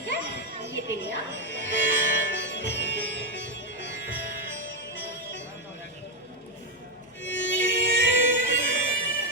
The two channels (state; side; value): normal; both; correlation 0.03